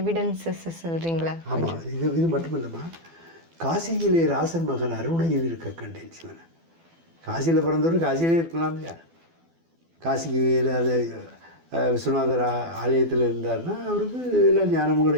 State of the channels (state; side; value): late; left; 12 ms